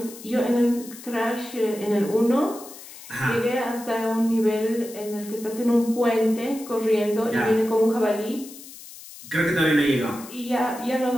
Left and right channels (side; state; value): left; noise; hiss, 16 dB below the sound